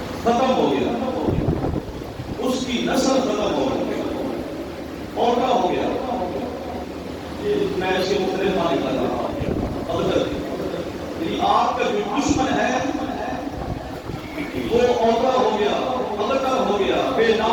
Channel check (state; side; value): identical; both; correlation 1.00